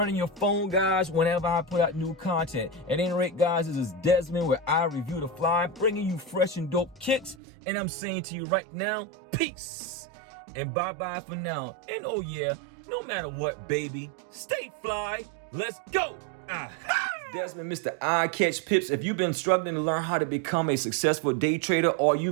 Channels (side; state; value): left; drops out; at 7.4 s